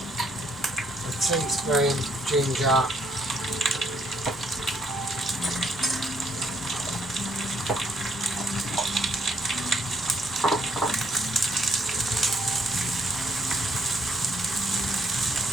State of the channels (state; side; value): normal; both; correlation 0.70